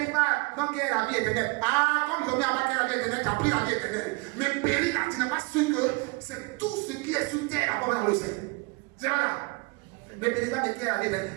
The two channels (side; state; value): left; quieter; 28.0 dB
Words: pas, donc il y a la vie éternelle. Ah, comme ils ont mis en bas qu'il y a la vie éternelle, tu as pris la vie éternelle. Mais périr là, tu n'es pas sûr que c'est tout ce qui est sur terre d'abord dans le ciel. C'est pas là. Ne périsse pas de qui est la vie éternelle.